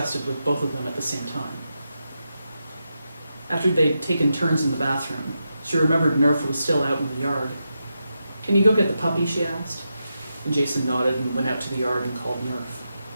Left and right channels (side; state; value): both; inverted; correlation -0.87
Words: with both of them at the same time. After they'd taken turns in the bathroom, she remembered Nerf was still out in the yard. Can you go get the puppy, she asked. And Jason nodded and went out to the yard and called